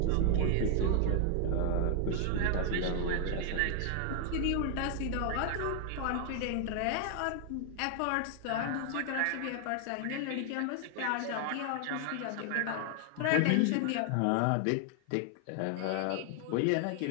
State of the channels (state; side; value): different; both; correlation 0.00